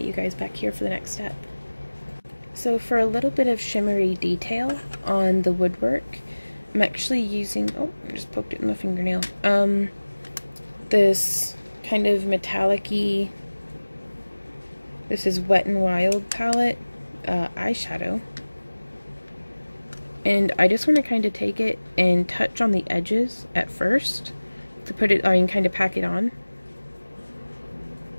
you guys back here for the next step. So for a little bit of shimmery detail on the woodwork, I'm actually using, oh, I just poked it in my fingernail, this kind of metallic-y, this is Wet n Wild palette eyeshadow. And I just want to kind of take it and touch on the edges at first to put it, kind of pack it on.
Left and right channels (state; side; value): inverted; both; correlation -1.00